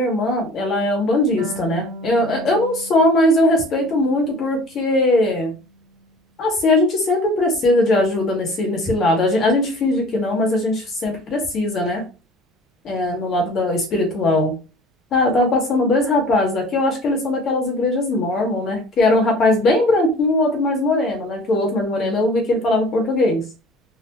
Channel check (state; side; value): normal; both; correlation 0.46